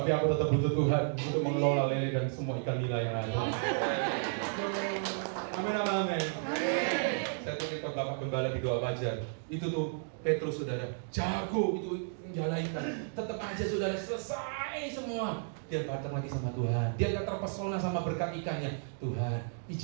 aku tetap butuh Tuhan untuk mengelola lele dan semua ikan nila yang ada. Amin, amin. Saya titip ke Bapak Gembala di doa fajar. Itu tuh Petrus saudara, jago itu menjalaikan. Tetap aja saudara selesai semua. Dia datang lagi sama Tuhan. Dia gak terpesona sama berkat ikannya. Tuhan,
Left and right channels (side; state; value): left; silent; digital silence